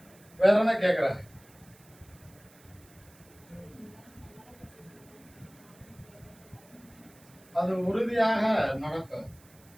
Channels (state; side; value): noise; right; hiss, 26 dB below the sound